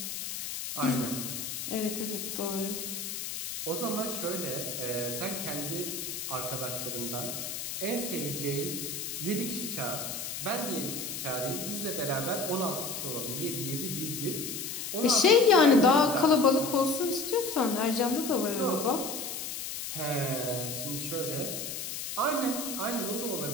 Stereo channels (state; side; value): noise; left; hiss, 5 dB below the sound